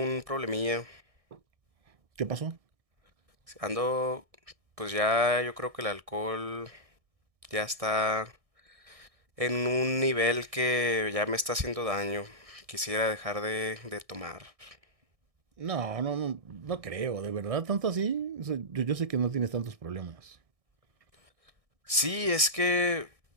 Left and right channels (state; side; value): late; left; 1.6 ms